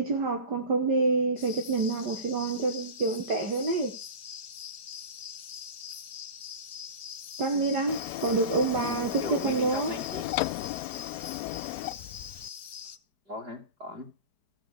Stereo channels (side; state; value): left; late; 4.5 ms